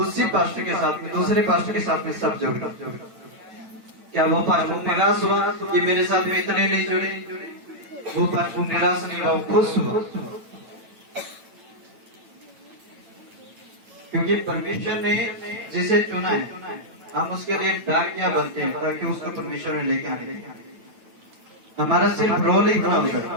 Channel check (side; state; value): left; late; 9.0 ms